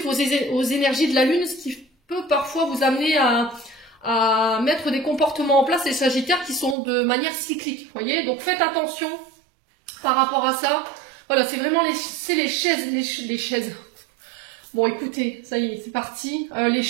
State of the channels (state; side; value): drops out; left; at 6.8 s